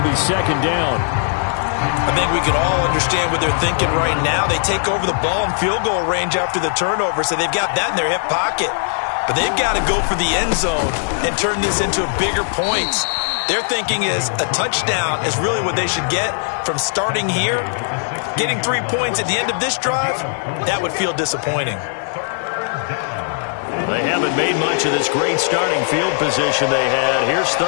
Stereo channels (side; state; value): right; silent; digital silence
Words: be second down. I think we can all understand what they're thinking right now. They take over the ball in field goal range after the turnover, so they've got that in their hip pocket. But they've got to go for the end zone and turn this into bigger points. Their thinking is a touchdown is really what they should get from starting here. Getting 3 points at the end of this drive, that would feel disappointing. They haven't made much of this great starting field position they had. Here's